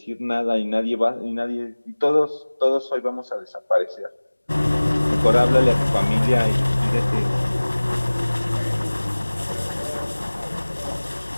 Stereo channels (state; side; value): inverted; both; correlation -1.00